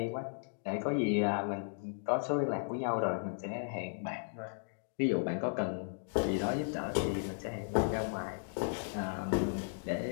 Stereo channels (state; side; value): silent; right; digital silence